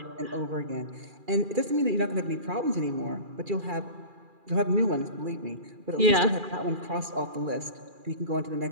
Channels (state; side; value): late; left; 2.4 ms